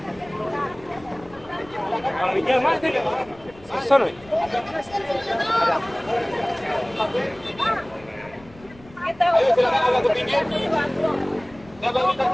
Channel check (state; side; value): noise; left; rumble, 23 dB below the sound